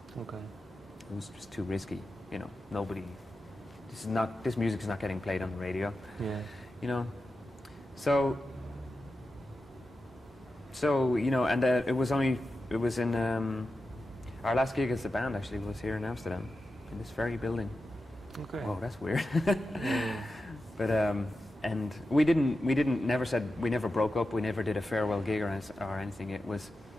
Okay. It was just too risky, you know. This music is not getting played on the radio. Yeah. You know. So you know, and it was in our last gig as a band actually was here in Amsterdam, in this very building. Okay. Oh, that's weird. But and we never broke up. We never did a farewell gig or anything.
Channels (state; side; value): normal; both; correlation 0.91